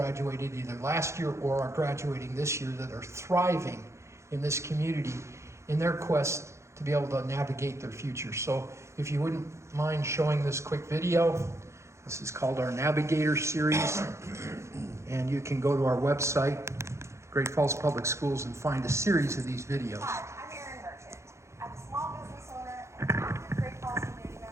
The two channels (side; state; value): left; late; 0.14 ms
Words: either last year or are graduating this year that are thriving in this community in their quest to be able to navigate their future. So if you wouldn't mind showing this quick video, this is called our Navigator series, and you can go to our website, Great Falls Public Schools, and find a series of these videos. Hi, I'm Erin Merchant. I'm a small business owner, an active Great Falls community